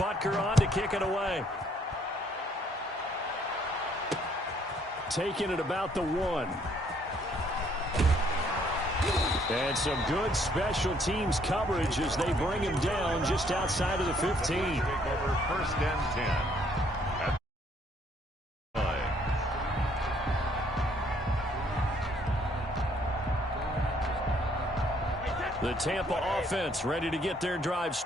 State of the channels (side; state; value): both; normal; correlation 0.66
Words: on to kick it away. Taking it about the 1. And some good special teams coverage as they bring him down just outside of the 15. Take over 1st and 10. At the Tampa offense ready to get their drive